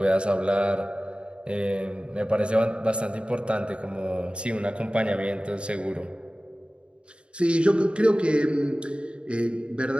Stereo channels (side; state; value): left; late; 0.055 ms